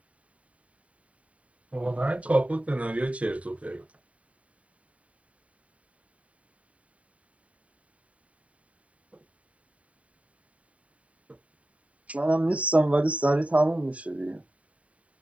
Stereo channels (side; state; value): left; late; 0.066 ms